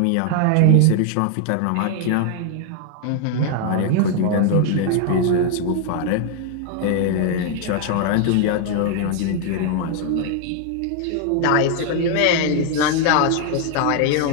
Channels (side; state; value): both; different; correlation 0.00